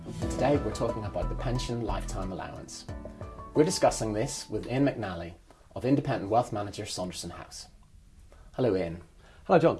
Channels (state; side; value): identical; both; correlation 1.00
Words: and today we're talking about the pension lifetime allowance. We're discussing this with Ian McNally of independent wealth manager Saunderson House. Hello, Ian. Hello, John.